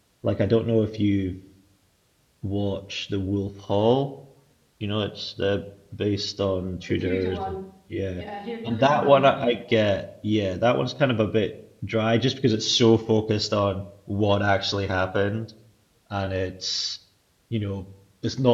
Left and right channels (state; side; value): identical; both; correlation 1.00